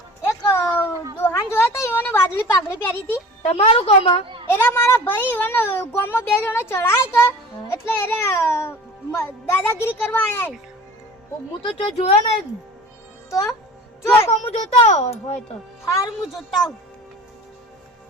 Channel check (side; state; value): both; normal; correlation 0.40